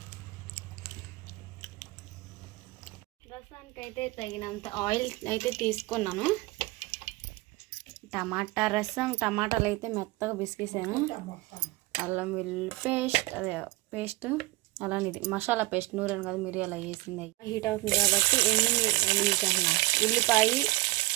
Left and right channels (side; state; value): left; quieter; 20.1 dB